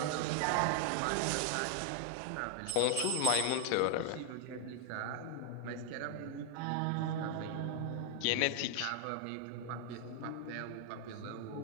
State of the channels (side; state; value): both; different; correlation 0.00